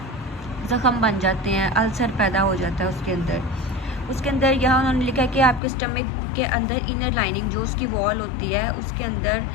ज़ख़म बन जाते हैं, अल्सर पैदा हो जाता है उसके अंदर यहाँ उन्होंने लिखा है कि आपके स्टमक के अंदर इनर लाइनिंग, जो उसकी वॉल होती है, उसके अंदर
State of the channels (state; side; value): drops out; right; at 5.6 s